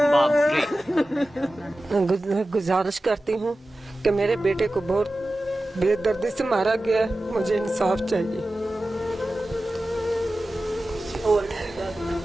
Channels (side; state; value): both; normal; correlation 0.95